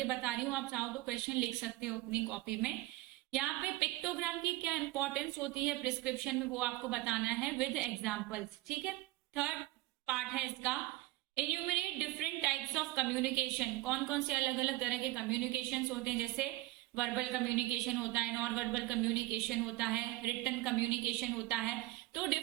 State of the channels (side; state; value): left; quieter; 19.1 dB